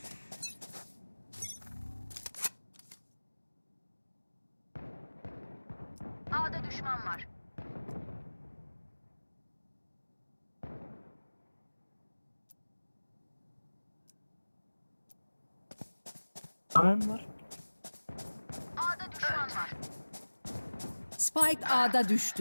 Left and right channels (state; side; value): inverted; both; correlation -1.00